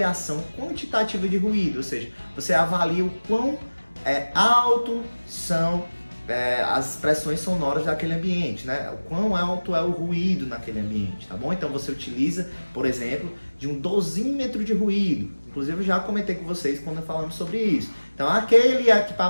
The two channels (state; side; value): inverted; both; correlation -1.00